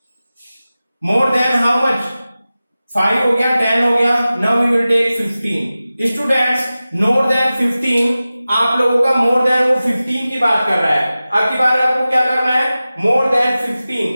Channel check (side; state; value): both; inverted; correlation -0.96